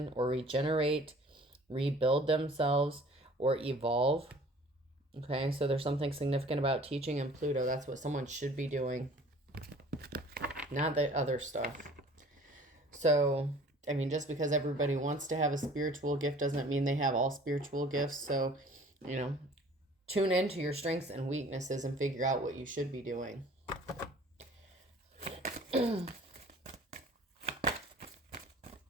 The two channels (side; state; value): both; normal; correlation 0.50